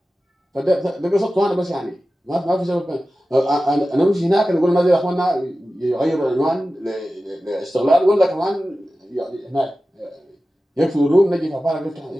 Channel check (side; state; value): both; normal; correlation 0.94